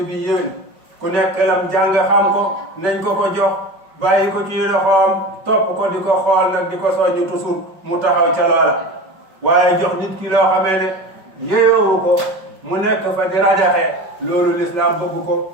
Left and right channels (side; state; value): left; late; 5.3 ms